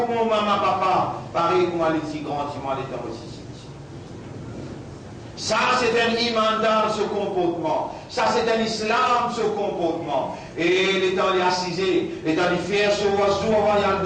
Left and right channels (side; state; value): both; identical; correlation 1.00